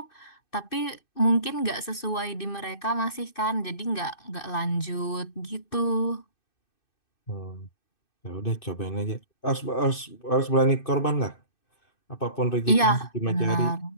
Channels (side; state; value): right; late; 2.6 ms